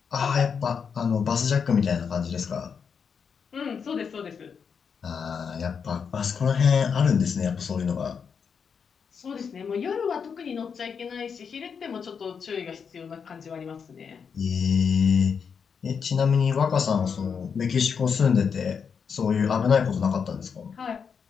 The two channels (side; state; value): right; quieter; 6.4 dB